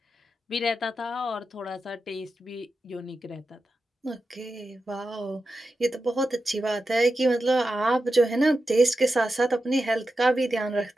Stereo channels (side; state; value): both; normal; correlation 0.90